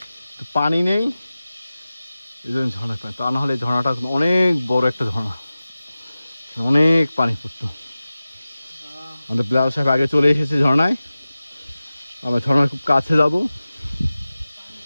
তো পানি নেই, এই জন্য ঝর্ণা পানি। তা না হলে ঝর্ণাটা অনেক বড় একটা ঝর্ণা, অনেক পানি পড়তো। আমাদের বিলাল সাহেব আগে চলে এসেছে ঝর্ণায়, আমরা ঝর্ণার খুব কাছে যাব।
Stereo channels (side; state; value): both; inverted; correlation -0.96